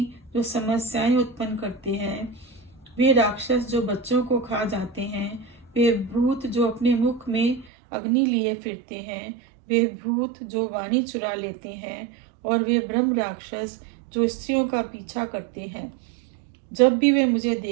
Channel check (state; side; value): drops out; left; at 7.7 s